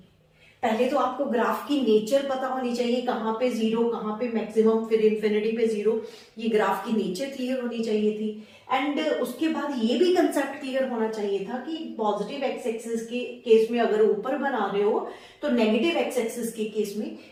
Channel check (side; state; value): both; identical; correlation 1.00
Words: पहले तो आपको ग्राफ की नेचर पता होनी चाहिए, कहां पे 0, कहां पे मैक्सिमम, फिर इंफिनिटी पे 0, ये ग्राफ की नेचर क्लियर होनी चाहिए थी। एंड उसके बाद ये भी कंसेप्ट क्लियर होना चाहिए था कि पॉजिटिव एक्स एक्सिस के केस में अगर ऊपर बना रहे हो तो नेगेटिव एक्स एक्सिस के केस में